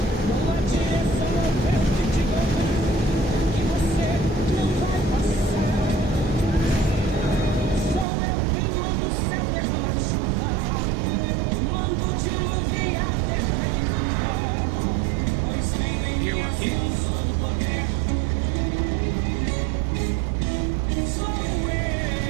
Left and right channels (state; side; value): drops out; left; at 8.1 s